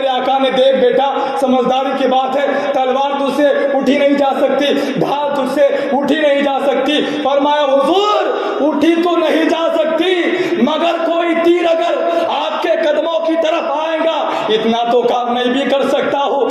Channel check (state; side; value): identical; both; correlation 1.00